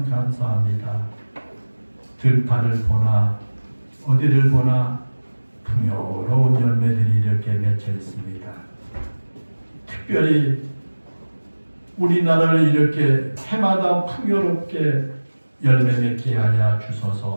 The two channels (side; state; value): both; inverted; correlation -1.00